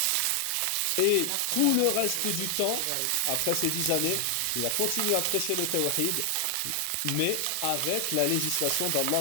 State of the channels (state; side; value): different; both; correlation 0.00